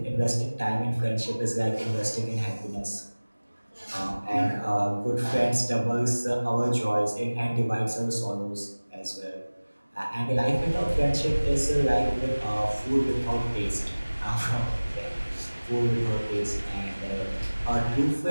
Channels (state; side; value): inverted; both; correlation -1.00